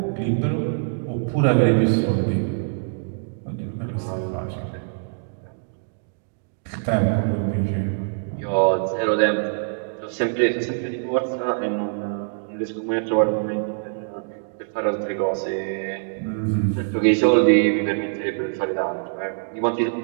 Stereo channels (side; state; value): left; silent; digital silence